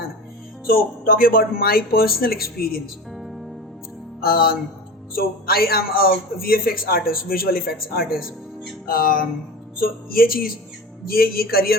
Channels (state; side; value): normal; both; correlation 0.32